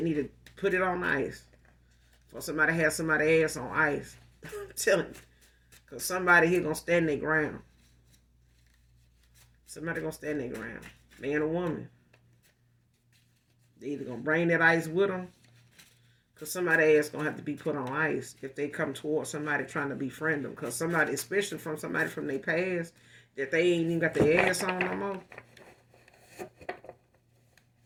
need to put it on ice. Or somebody has somebody ass on ice. I'm telling you. Because somebody here gonna stand their ground. Somebody gonna stand their ground. Man or woman. They either gonna bring that ice with them, because somebody ass gonna have to be put on ice if they come towards somebody trying to befriend them. Because somebody, especially from somebody from their past, that they ain't even got their ass on no more.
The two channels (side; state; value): both; identical; correlation 1.00